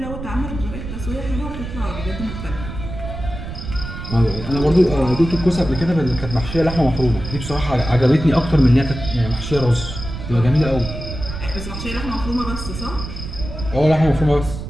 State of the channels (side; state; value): right; noise; rumble, 8 dB below the sound